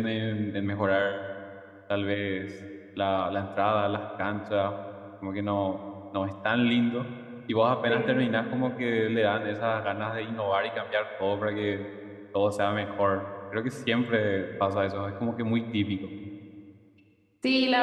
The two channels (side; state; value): both; identical; correlation 1.00